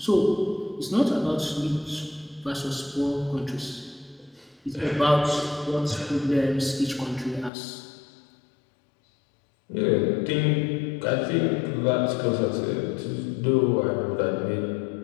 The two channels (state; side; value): drops out; right; at 7.5 s